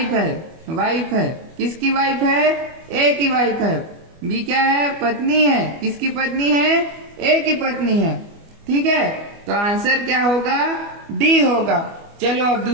है। वाइफ है, किसकी वाइफ है, A की वाइफ है। B क्या है, पत्नी है। किसकी पत्नी है, A की पत्नी है। ठीक है, तो आंसर क्या होगा, D होगा। चलो अब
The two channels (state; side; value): late; left; 25 ms